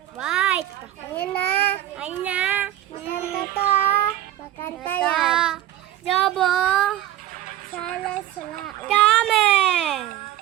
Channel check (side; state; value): left; quieter; 13.6 dB